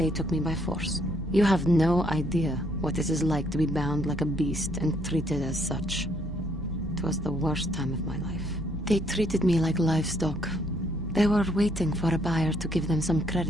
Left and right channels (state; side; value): normal; both; correlation 0.69